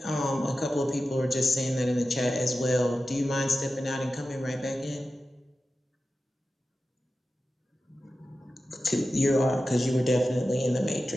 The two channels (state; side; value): normal; both; correlation 0.93